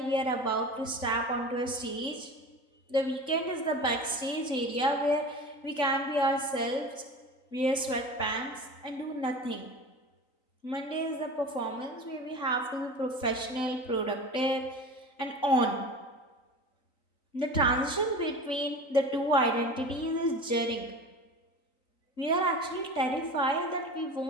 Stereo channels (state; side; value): late; right; 3.9 ms